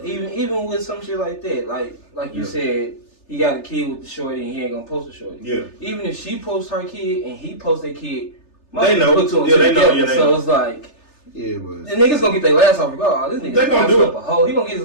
even with some shit like that, like you said, he got a kid with the shorty and he ain't gonna post the shorty. Yeah. Even if she posts her kid and he posts their kid, they know. Put two and Yeah, two they know. together. Yeah, they so know. it's like, Yeah, but the niggas gonna get their last off regardless. This nigga They gonna do it. up a hoe. He gonna get his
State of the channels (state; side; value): late; right; 3.3 ms